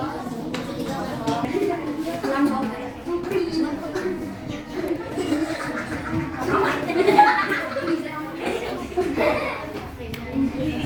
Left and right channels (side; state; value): both; identical; correlation 1.00